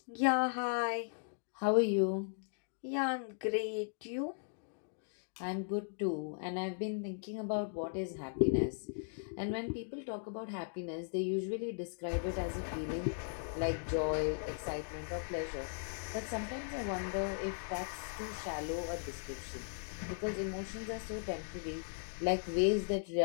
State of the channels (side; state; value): right; silent; digital silence